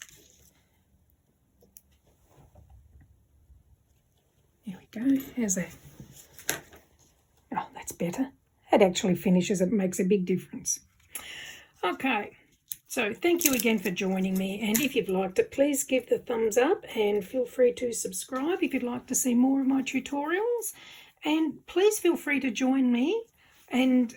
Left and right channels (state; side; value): identical; both; correlation 1.00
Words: There we go. How's that? Oh, that's better. It actually finishes. It makes a big difference. Okay. So thank you again for joining me, and if you've liked it, please give the thumbs up and feel free to subscribe if you'd like to see more of my tutorials. And please feel free to join me and